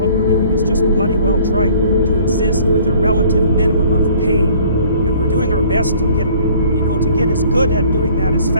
we're doing is just bloody well trying to exist with a relative minimum of pain. And we're doing our best to get as good at doing that as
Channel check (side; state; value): both; inverted; correlation -0.55